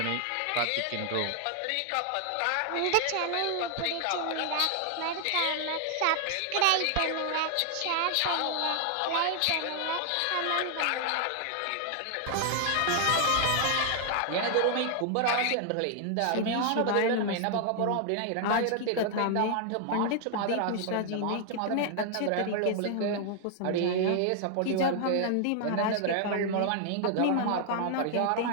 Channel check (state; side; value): different; both; correlation 0.00